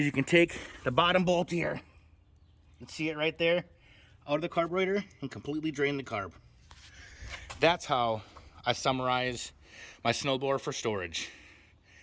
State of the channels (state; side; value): identical; both; correlation 1.00